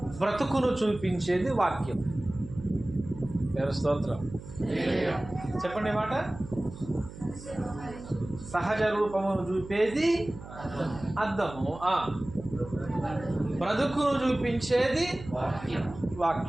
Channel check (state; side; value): noise; right; hum, 14 dB below the sound